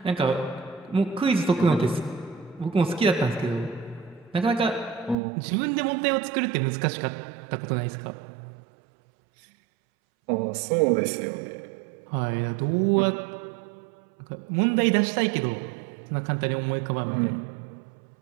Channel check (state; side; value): drops out; left; at 5.2 s